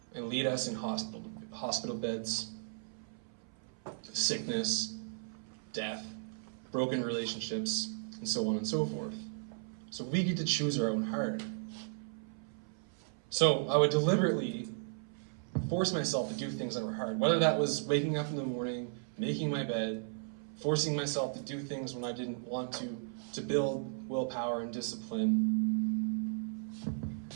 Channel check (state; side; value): silent; left; 54 dB below the other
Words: and lead us in hospital beds, sickness, death, broken relationships, and so on and so forth. So we get to choose our own heart. So I would deliberately force myself to do things that were hard, whether that was waking up in the morning, making my bed, forcing myself to do things when I didn't want to build willpower and discipline. I